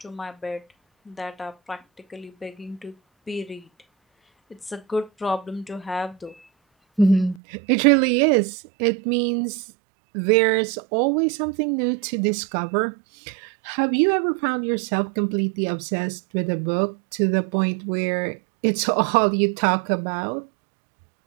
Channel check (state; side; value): drops out; left; at 7.4 s